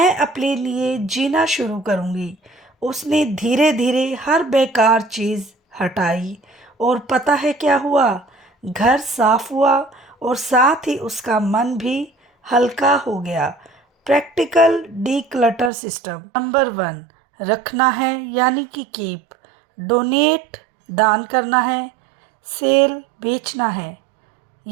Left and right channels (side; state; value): left; drops out; at 15.7 s